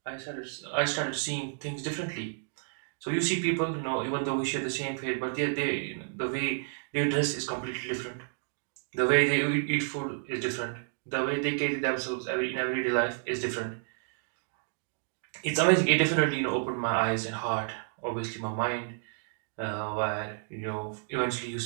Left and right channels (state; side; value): silent; left; 57 dB below the other